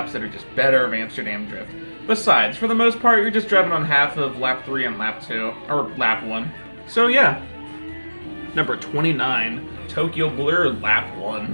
that are just better of Amsterdam Drift. Besides, for the most part, you're just driving on half of lap 3 and lap 2, or lap 1. So yeah. Number 29, Tokyo Blur, lap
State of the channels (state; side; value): inverted; both; correlation -1.00